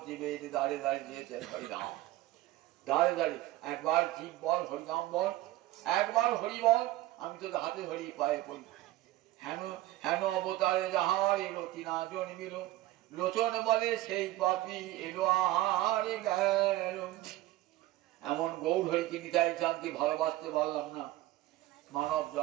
জীবের দাঁড়ে দাঁড়িয়ে দিয়েছেন হরিনাম। দাঁড়ে দাঁড়িয়ে একবার জীব বল হরিনাম বল, একবার হরি বল, আমি তোদের হাতে ধরি পায়ে পড়ি। হেন হেন অবতারে যাহার এলো তিনা জন্মিল, লোচন বলে সেই পাপি এলো আর গেল। এমন গৌর হরিকে নিতাই চাঁদকে ভালোবাসতে পারলাম না, মানব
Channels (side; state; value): left; quieter; 16.3 dB